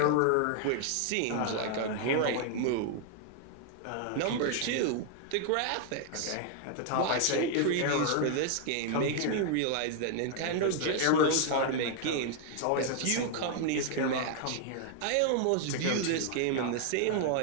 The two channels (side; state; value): both; different; correlation 0.00